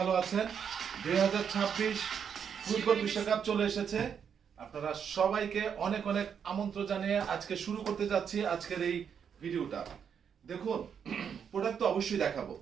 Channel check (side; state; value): left; quieter; 7.5 dB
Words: আছেন। 2026 ফুটবল বিশ্বকাপ চলে এসেছে। আপনারা সবাইকে অনেক অনেক আমন্ত্রণ জানিয়ে আজকে শুরু করতে যাচ্ছি আজকের এই ভিডিওটা। দেখুন, প্রোডাক্ট তো অবশ্যই দেখাবো,